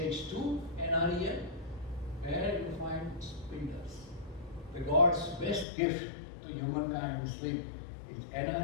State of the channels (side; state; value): right; drops out; at 5.7 s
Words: 2, NREM, where you find spindles. The God's best gift to humankind in sleep is